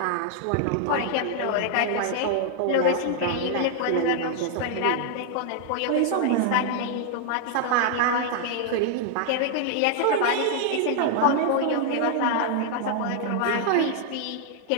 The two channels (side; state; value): both; different; correlation 0.00